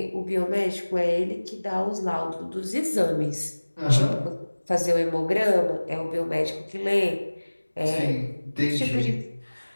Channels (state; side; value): inverted; both; correlation -1.00